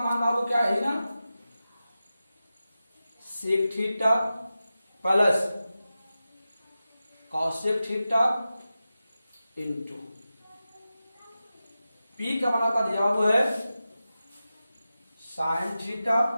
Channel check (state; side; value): inverted; both; correlation -0.93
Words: बाबू क्या है ना? Sec theta plus cosec theta into P का मान आपका दिया हुआ है sine theta